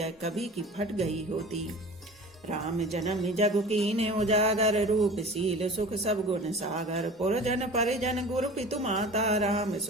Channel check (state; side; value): normal; both; correlation 0.39